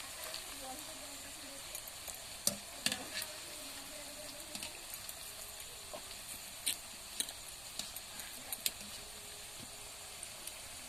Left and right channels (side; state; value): right; noise; rumble, 12 dB below the sound